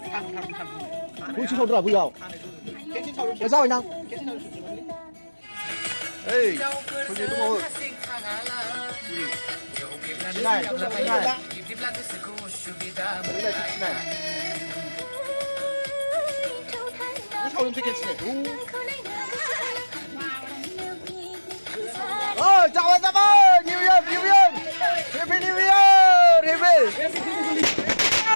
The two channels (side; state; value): both; inverted; correlation -1.00